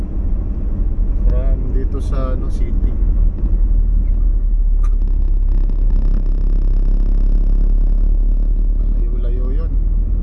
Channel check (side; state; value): both; identical; correlation 1.00